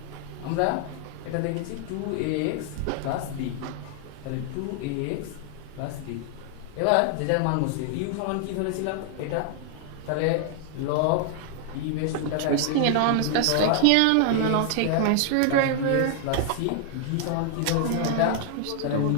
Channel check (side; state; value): both; different; correlation 0.00